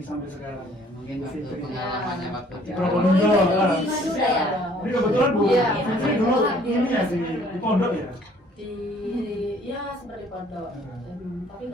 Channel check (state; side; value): normal; both; correlation 0.58